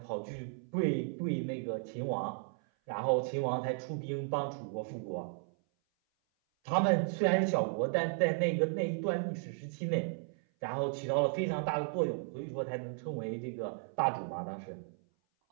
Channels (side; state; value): left; silent; 55 dB below the other